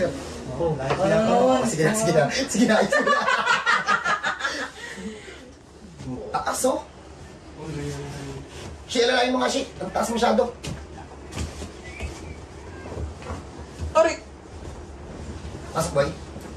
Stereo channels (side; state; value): both; identical; correlation 1.00